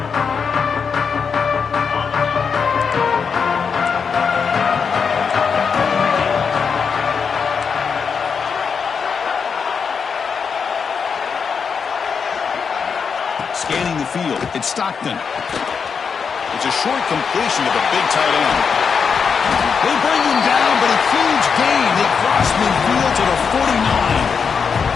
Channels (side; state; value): right; quieter; 6.1 dB